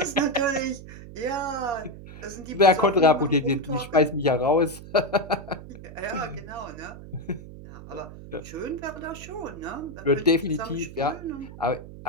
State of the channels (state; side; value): noise; right; hum, 15 dB below the sound